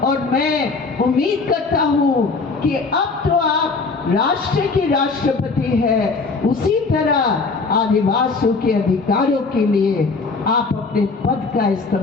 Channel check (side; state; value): right; quieter; 4.2 dB